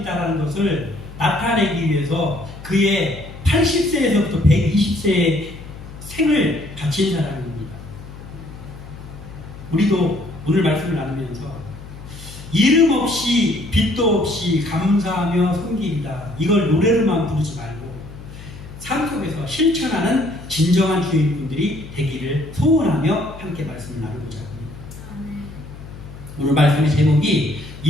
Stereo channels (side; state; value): left; noise; hum, 15 dB below the sound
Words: 것을 나타내기 위해서 그의 80세에서부터 120세의 생을 바친 사람입니다. 우리도 오늘 말씀을 나누면서 이름 없이 빛도 없이 감사하며 섬기리다, 이걸 노래로만 부르지 말고 삶 속에서 실천하는 진정한 주인분들이 되기를 소원하며 함께 말씀을 나누고자 합니다. 오늘 말씀의 제목이